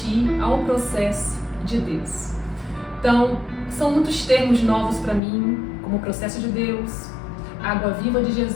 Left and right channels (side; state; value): right; drops out; at 5.2 s